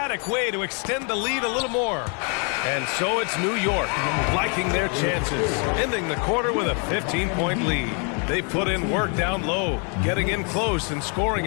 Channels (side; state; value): right; quieter; 37.5 dB